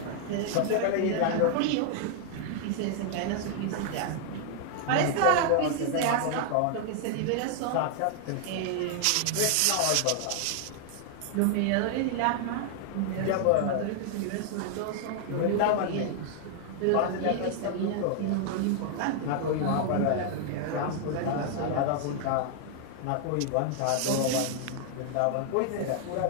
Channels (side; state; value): both; different; correlation 0.00